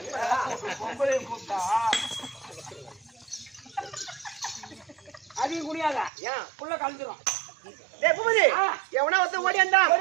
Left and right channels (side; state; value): left; drops out; at 6.1 s